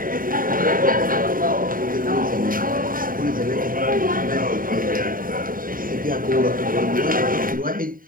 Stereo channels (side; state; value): left; late; 0.41 ms